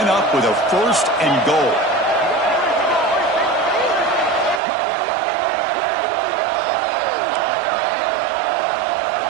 up with a 1st and goal.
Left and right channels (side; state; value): left; drops out; at 4.6 s